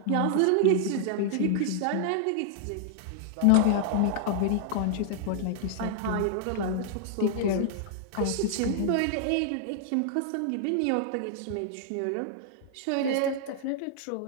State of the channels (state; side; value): different; both; correlation -0.01